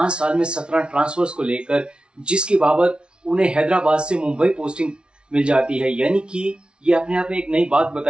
साल में 17 ट्रांसफर्स को लेकर, जिसकी बाबत उन्हें हैदराबाद से मुंबई पोस्टिंग मिल जाती है। यानी कि ये अपने आप में एक नई बात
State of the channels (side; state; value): left; late; 0.057 ms